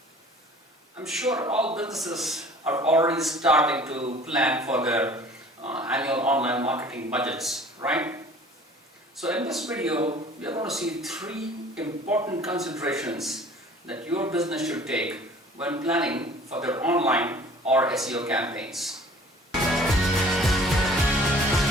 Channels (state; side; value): normal; both; correlation 0.49